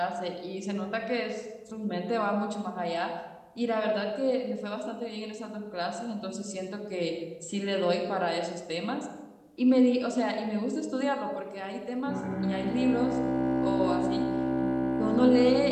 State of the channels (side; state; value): both; identical; correlation 1.00